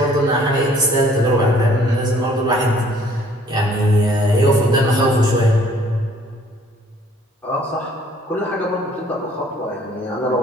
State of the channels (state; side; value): normal; both; correlation 0.58